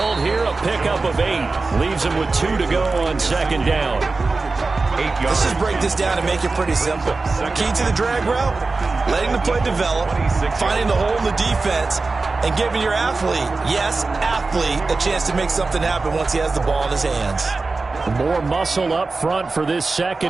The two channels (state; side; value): quieter; left; 3.8 dB